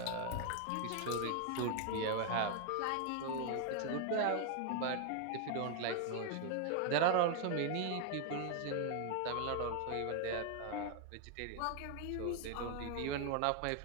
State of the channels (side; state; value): both; different; correlation 0.00